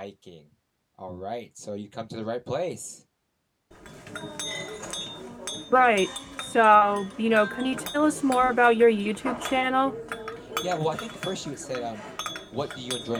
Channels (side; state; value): both; identical; correlation 1.00